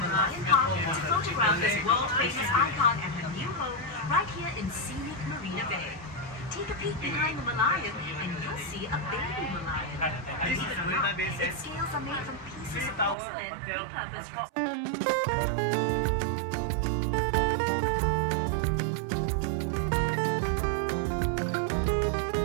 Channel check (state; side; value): drops out; left; at 13.2 s